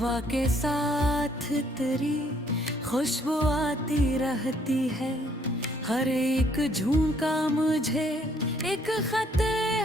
के साथ तेरी खुशबू आती रहती है, हर एक झोंका मुझे एक खत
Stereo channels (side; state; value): both; normal; correlation 0.65